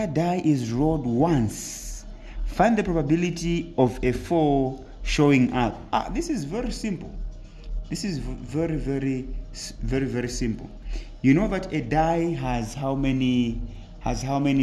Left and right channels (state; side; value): identical; both; correlation 1.00